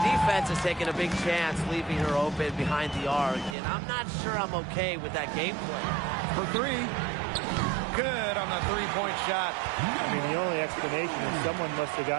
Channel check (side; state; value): left; drops out; at 3.6 s